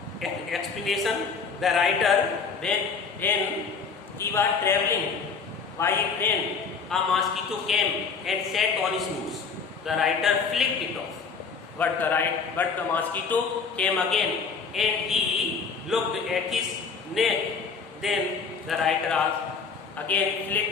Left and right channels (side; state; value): right; quieter; 5.3 dB